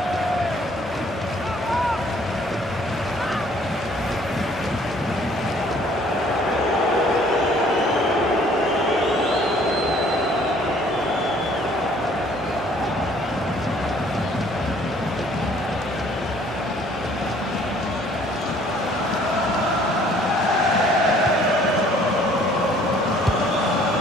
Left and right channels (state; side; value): normal; both; correlation 0.58